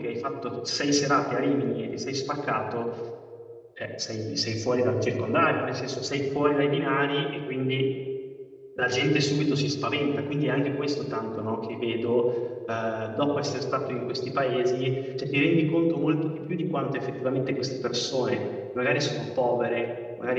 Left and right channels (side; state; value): both; identical; correlation 1.00